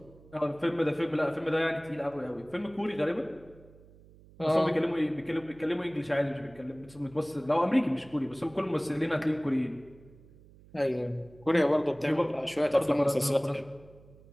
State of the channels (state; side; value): noise; right; hum, 24 dB below the sound